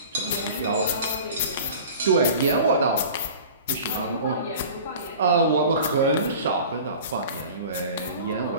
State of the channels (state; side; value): inverted; both; correlation -0.40